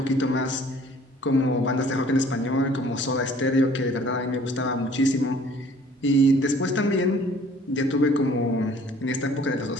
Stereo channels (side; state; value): both; normal; correlation 0.54